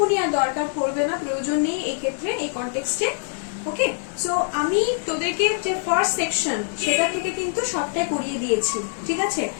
আর দরকার পড়বে না, প্রয়োজন নেই এই ক্ষেত্রে, এই কনটেক্সটে। ওকে, সো আমি তোদেরকে যে ফার্স্ট সেকশন সেটা থেকে কিন্তু সবটাই করিয়ে দিয়েছি, ঠিক আছে?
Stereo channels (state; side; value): silent; right; digital silence